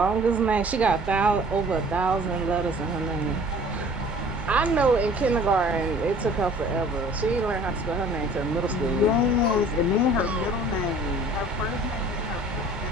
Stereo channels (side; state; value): both; normal; correlation 0.49